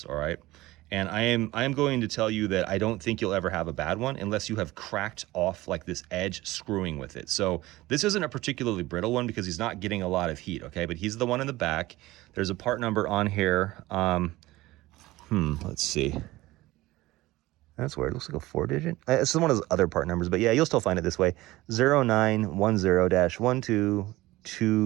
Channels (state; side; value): quieter; left; 18.4 dB